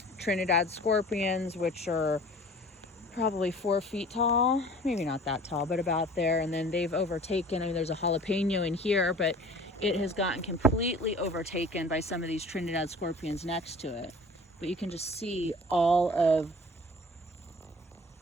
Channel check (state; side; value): normal; both; correlation 0.45